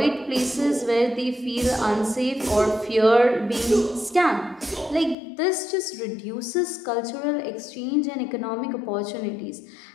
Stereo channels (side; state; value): right; drops out; at 5.2 s